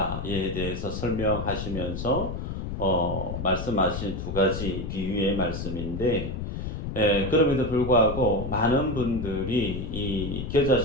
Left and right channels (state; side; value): noise; left; rumble, 5 dB below the sound